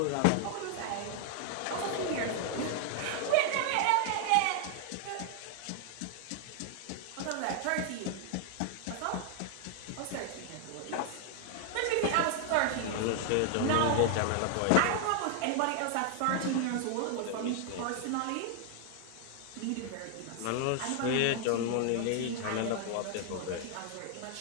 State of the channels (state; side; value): different; both; correlation 0.00